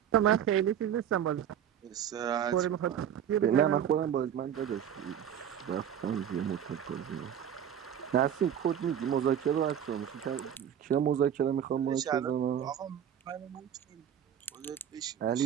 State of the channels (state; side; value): quieter; left; 9.4 dB